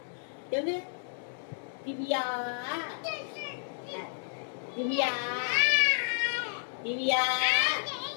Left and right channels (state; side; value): silent; right; 57 dB below the other